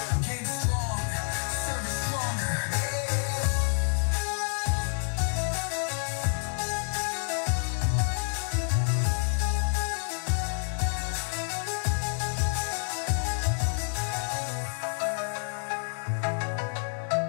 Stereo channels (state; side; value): silent; right; digital silence